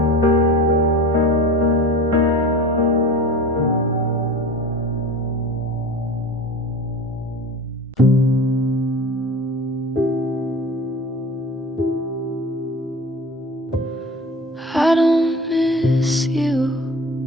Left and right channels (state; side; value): normal; both; correlation 0.36